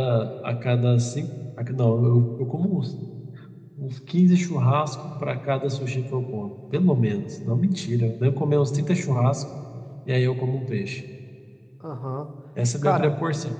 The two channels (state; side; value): identical; both; correlation 1.00